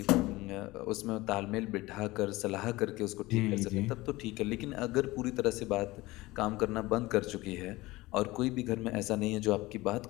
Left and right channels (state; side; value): quieter; right; 19.9 dB